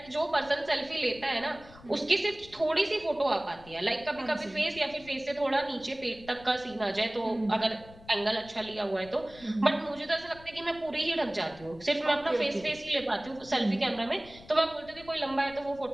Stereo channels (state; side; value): noise; left; rumble, 21 dB below the sound